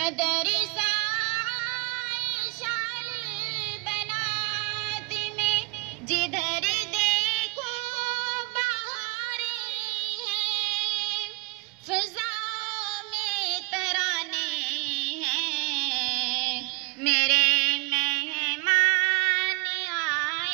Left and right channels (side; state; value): left; quieter; 26.8 dB